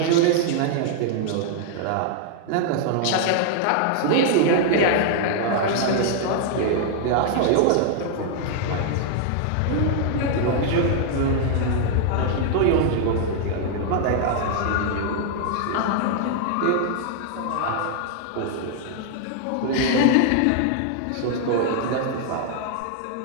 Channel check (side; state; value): both; different; correlation 0.00